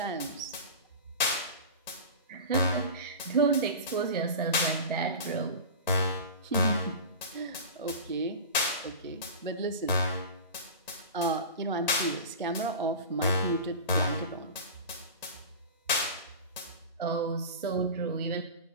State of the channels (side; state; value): both; inverted; correlation -0.32